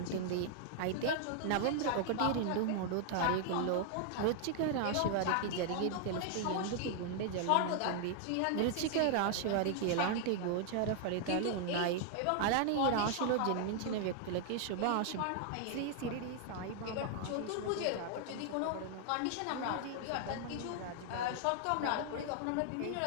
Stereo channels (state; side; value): different; both; correlation 0.00